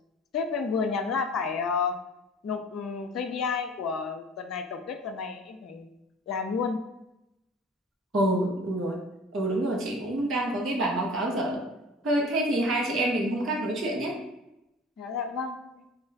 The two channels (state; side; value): normal; both; correlation 0.43